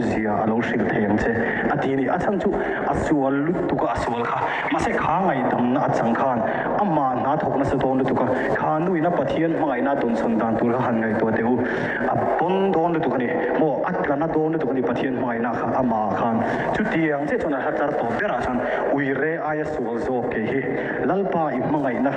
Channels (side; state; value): both; identical; correlation 1.00